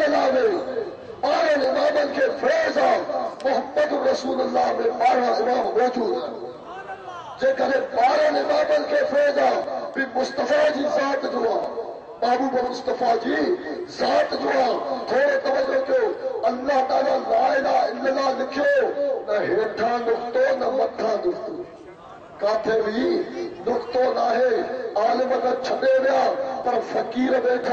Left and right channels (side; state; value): both; identical; correlation 1.00